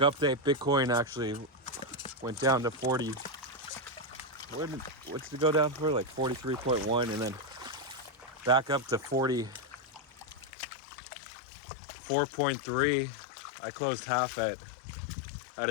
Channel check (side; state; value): right; drops out; at 10.5 s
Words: Bitcoin actually went down to 40. What's it go down for? Like 43.1, and then back up to 44.3. I closed half at a